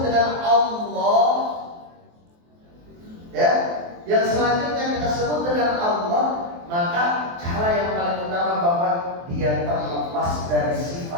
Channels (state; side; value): late; left; 23 ms